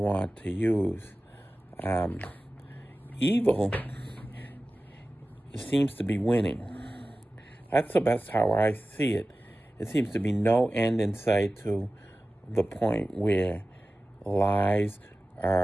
to use. Evil seems to be winning. That's how I see it. It seems to be no end in sight to the point where lies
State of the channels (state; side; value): normal; both; correlation 0.96